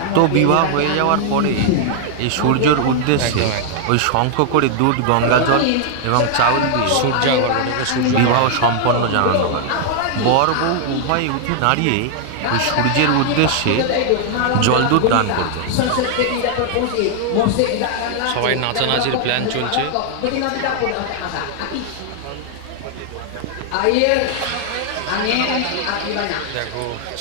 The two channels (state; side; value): different; both; correlation 0.00